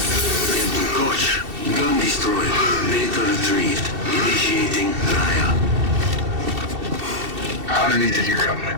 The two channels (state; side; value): late; left; 2.7 ms